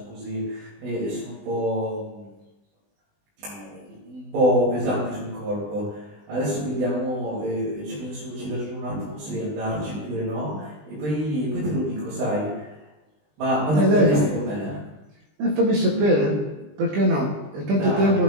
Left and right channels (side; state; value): left; late; 20 ms